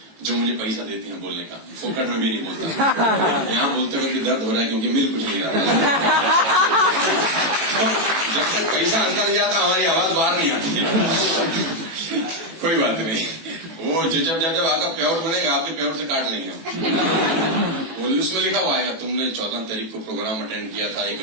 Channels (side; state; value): left; late; 18 ms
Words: जो मुझे पैसा देती हैं बोलने का। फोकट में भी नहीं बोलता, यहाँ बोलते हुए दर्द हो रहा है क्योंकि मिल कुछ नहीं रहा। जब तक पैसा अंदर नहीं जाता हमारी आवाज बाहर नहीं आती। कोई बात नहीं, वो जब आपका पेआउट बनेगा आपके पेआउट से काट लेंगे। उसमें लिखा हुआ है तुमने 14 तारीख को प्रोग्राम अटेंड किया था, 1